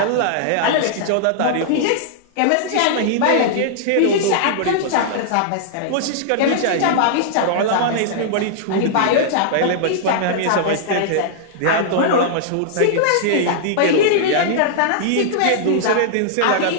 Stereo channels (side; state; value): both; different; correlation -0.01